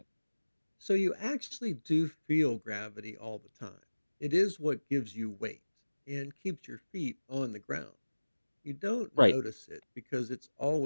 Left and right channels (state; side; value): inverted; both; correlation -1.00